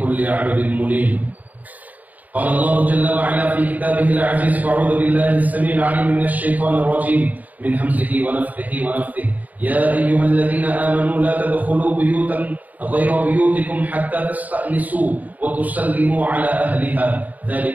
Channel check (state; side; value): late; left; 0.077 ms